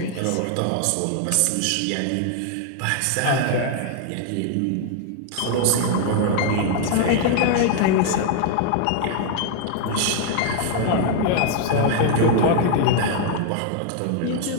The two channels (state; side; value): different; both; correlation 0.00